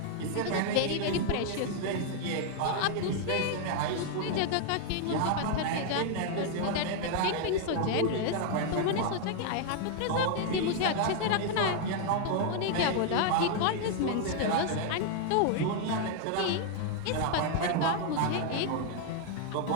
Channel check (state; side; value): different; both; correlation 0.00